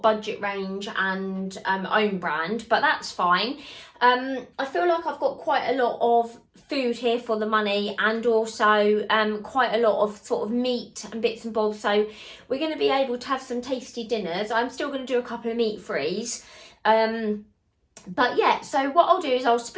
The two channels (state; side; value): identical; both; correlation 1.00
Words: budget range and own brand, but that's fine. I feel like I've got quite a lot of food here for the money, and also quite a lot of sort of meat and bits and bobs. So we're going to be able to have some tasty dinners. I'm still going to do a couple of meat frees. But yeah, so what I'll do is I'll